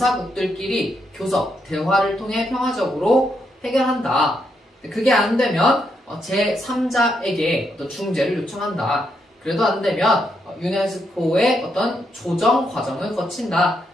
교섭, 대화를 통해 평화적으로 해결한다. 그게 안 되면 제3자에게 어떤 중재를 요청한다. 그래도 안 되면 유네스코의 어떤 조정 과정을 거친다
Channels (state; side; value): normal; both; correlation 0.79